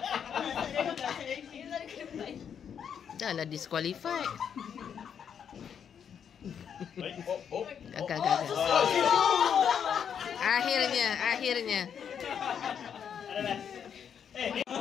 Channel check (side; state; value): right; quieter; 7.9 dB